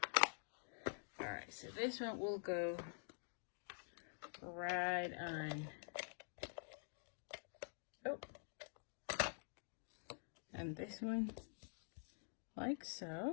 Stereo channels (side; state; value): right; silent; digital silence